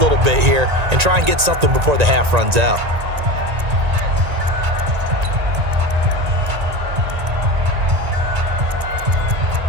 bit here and try and get something before the half runs out.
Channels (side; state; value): left; late; 1.9 ms